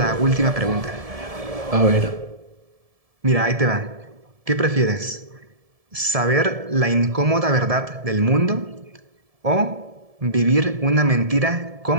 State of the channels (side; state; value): left; late; 1.7 ms